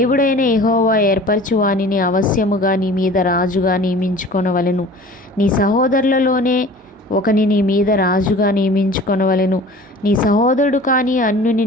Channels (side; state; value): both; normal; correlation 0.43